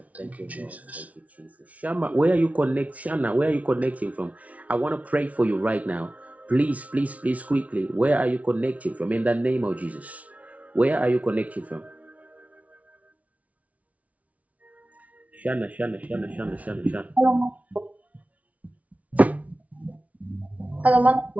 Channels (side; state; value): left; late; 0.068 ms